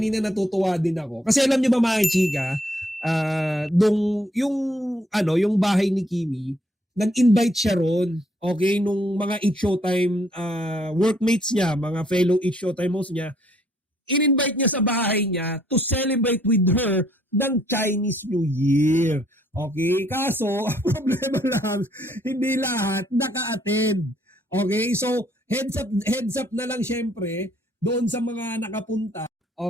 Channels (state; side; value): normal; both; correlation 0.67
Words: natutuwa din ako. Kasi alam nyo ba mga chika, yung bahay ni Kimi, nag-invite siya ron, okay, nung mga Eat Showtime workmates niya, mga fellow Eat Showtime hosts niya, in-invite niya sa bahay niya to celebrate with her ng Chinese New Year. Okay? Kaso, ang problema lang, hindi lahat naka-attend. Okay? So, heads up na lang syempre, doon sa mga nakapunta.